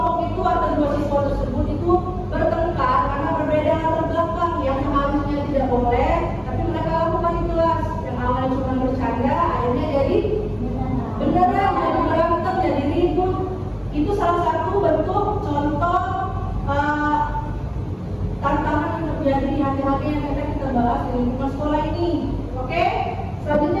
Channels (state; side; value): identical; both; correlation 1.00